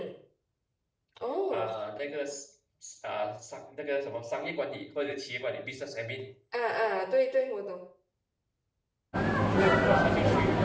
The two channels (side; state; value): both; identical; correlation 1.00